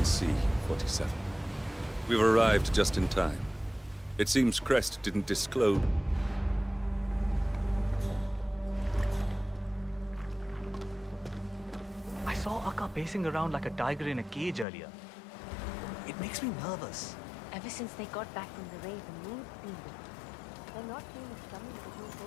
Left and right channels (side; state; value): right; drops out; at 14.7 s